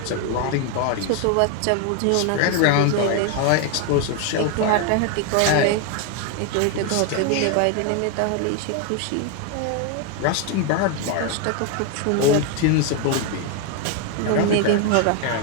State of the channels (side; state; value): both; different; correlation 0.01